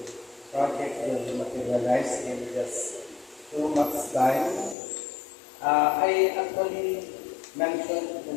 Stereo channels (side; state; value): right; drops out; at 4.8 s